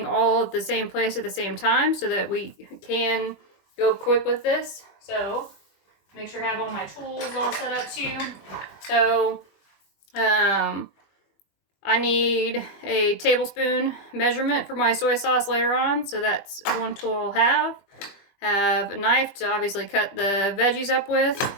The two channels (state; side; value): late; right; 20 ms